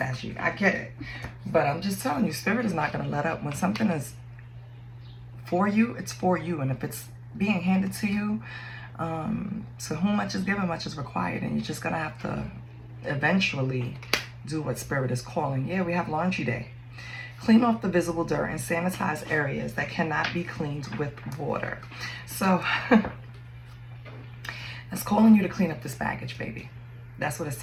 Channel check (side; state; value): both; identical; correlation 1.00